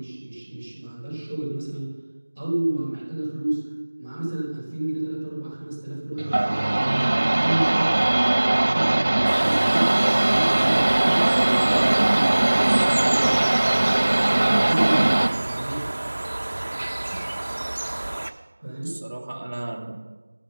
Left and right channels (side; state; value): both; inverted; correlation -1.00